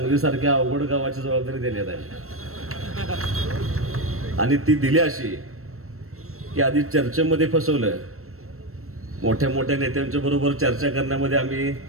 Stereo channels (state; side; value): late; left; 0.63 ms